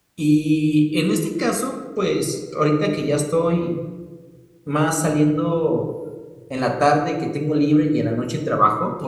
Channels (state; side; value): identical; both; correlation 1.00